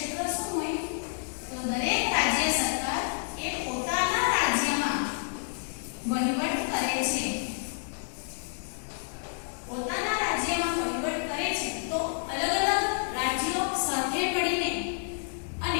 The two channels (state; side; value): silent; right; digital silence